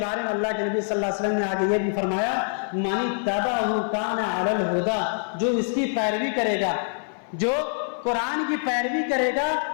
میں اللہ کے نبی صلی اللہ علیہ وسلم نے آگے یہ بھی فرمایا من اتبعہ کان علی الہدی، جو اس کی پیروی کرے گا، جو قرآن کی پیروی کرے گا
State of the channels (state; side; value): silent; right; 57 dB below the other